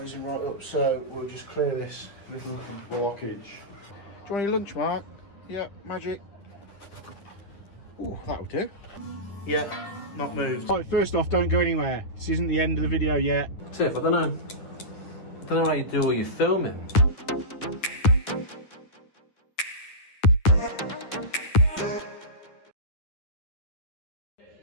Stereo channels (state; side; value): late; right; 10 ms